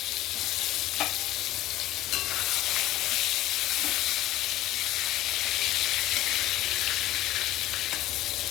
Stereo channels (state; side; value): quieter; right; 15.3 dB